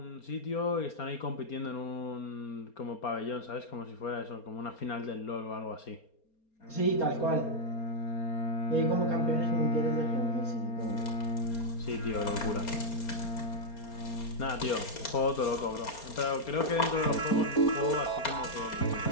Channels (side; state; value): right; late; 4.3 ms